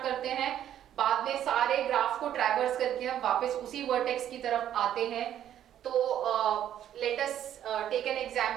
करते हैं, बाद में सारे ग्राफ को ट्रैवर्स करके हम वापस उसी वर्टेक्स की तरफ आते हैं। तो let us take an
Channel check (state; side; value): quieter; left; 10.8 dB